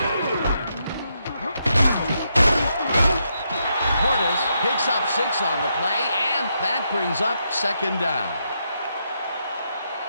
Portis picks up 6 on the play, and that brings up second down.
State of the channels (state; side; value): inverted; both; correlation -0.80